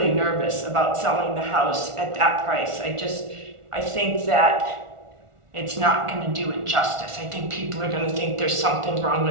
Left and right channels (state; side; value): late; left; 1.4 ms